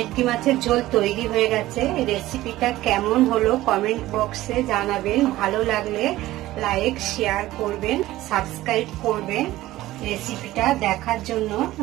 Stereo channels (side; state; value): left; quieter; 16.2 dB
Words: মাছের ঝোল তৈরি হয়ে গেছে। রেসিপিটা কেমন হলো কমেন্ট বক্সে জানাবেন। ভালো লাগলে লাইক শেয়ার করবেন, সাবস্ক্রাইব করবেন। রেসিপিটা দেখার জন্য